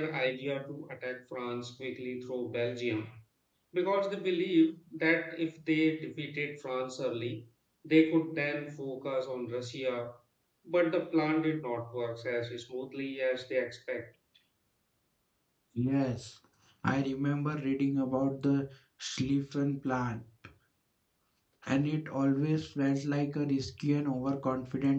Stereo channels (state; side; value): identical; both; correlation 1.00